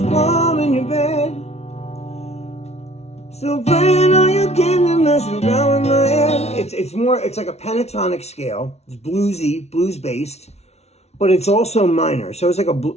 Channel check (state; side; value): late; right; 0.31 ms